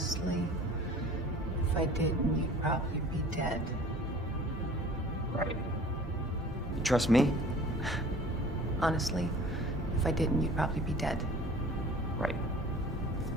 if I didn't, you'd probably be dead. Right. You trust me? Honestly, if I didn't, you'd probably be dead. Right.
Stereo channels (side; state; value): both; normal; correlation 0.46